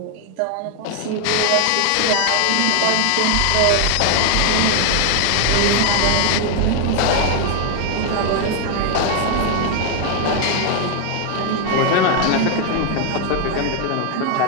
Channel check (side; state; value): both; different; correlation 0.00